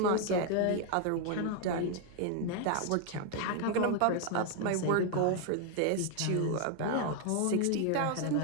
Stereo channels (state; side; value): different; both; correlation 0.00